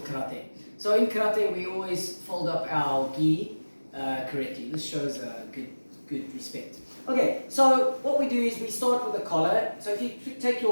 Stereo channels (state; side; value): inverted; both; correlation -1.00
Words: karate. So in karate we always fold up our gi correctly. This shows good respect. Okay, so what we do is we start with the collar. So if you take